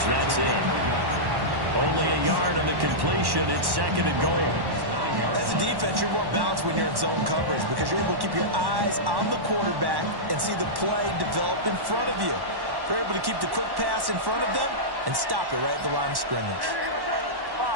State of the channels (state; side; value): late; left; 1.1 ms